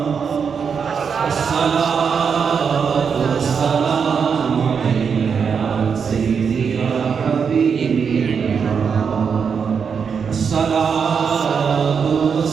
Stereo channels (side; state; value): left; quieter; 6.4 dB